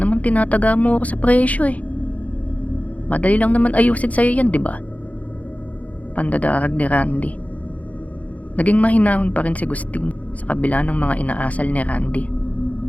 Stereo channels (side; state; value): right; late; 0.071 ms